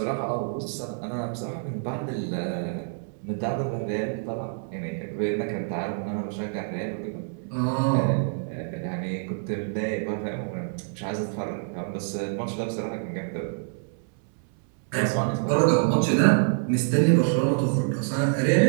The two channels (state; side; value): silent; left; 60 dB below the other